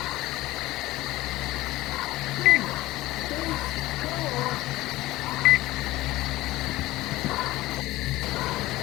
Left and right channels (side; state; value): right; quieter; 17.8 dB